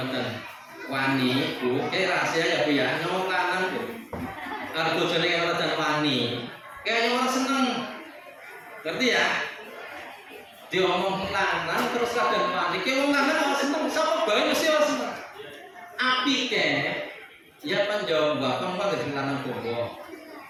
wani, Bu, rahasia ya Bu ya, wong lanang Bu. Arep bojone kaya ngoten wani, kaya orang seneng. Ngerti ya? Diomong lanang terus kadang wani, kaya wong lanang ora seneng, sapa bae mesti ora seneng. Api ke ya panjang bapak dari lanang bobo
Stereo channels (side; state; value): both; identical; correlation 1.00